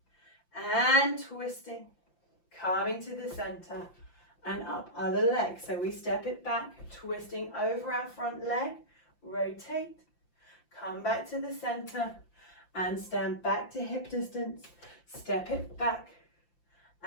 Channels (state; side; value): late; right; 5.8 ms